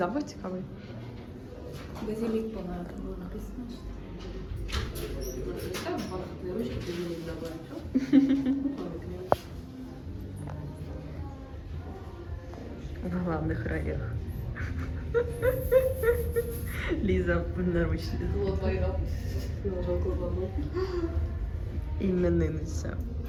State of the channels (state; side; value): identical; both; correlation 1.00